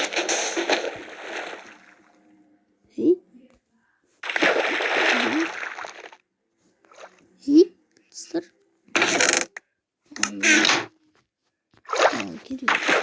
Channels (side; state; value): both; identical; correlation 1.00